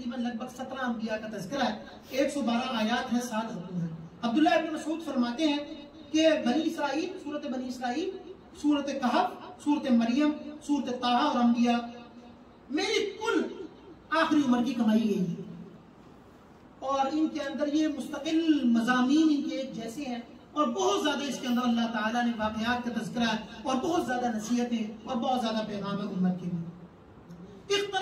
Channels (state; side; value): identical; both; correlation 1.00